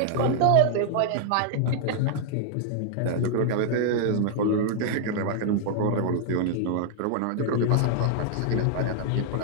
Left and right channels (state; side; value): different; both; correlation -0.01